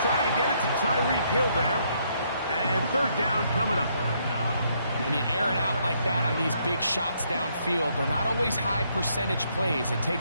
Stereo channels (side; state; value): both; inverted; correlation -0.72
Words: trying to get it to Tyreek Hill there. And 3rd down coming up. When you air it out like that on these big shots downfield, they're not always high percentage plays. It